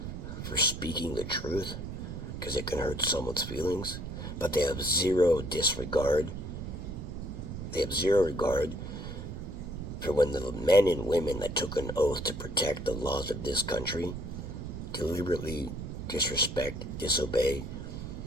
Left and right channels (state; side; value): noise; right; rumble, 7 dB below the sound